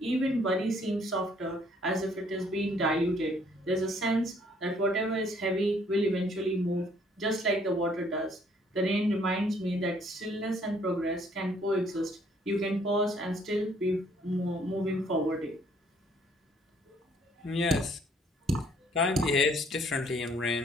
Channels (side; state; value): both; normal; correlation 0.63